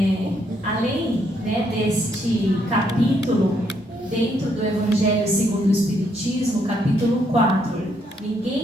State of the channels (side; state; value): both; normal; correlation 0.73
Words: além, né, deste capítulo, dentro do Evangelho segundo o Espiritismo, capítulo 4,